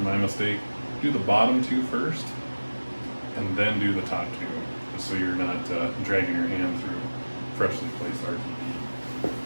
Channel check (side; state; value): both; inverted; correlation -1.00